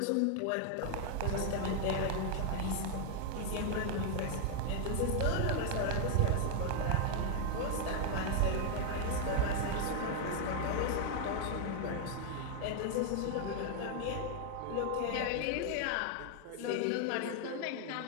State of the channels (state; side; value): different; both; correlation 0.00